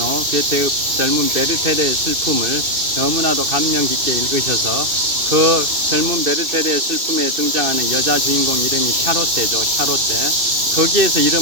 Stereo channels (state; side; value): late; left; 2.7 ms